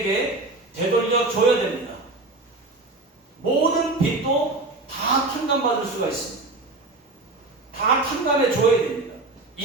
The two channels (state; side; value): quieter; left; 3.1 dB